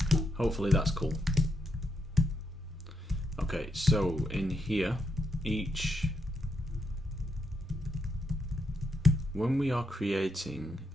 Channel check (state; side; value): normal; both; correlation 0.81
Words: Hopefully that's cool. Okay, so in here, when we are creating